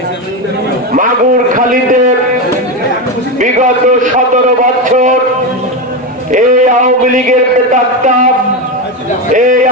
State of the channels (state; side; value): normal; both; correlation 0.14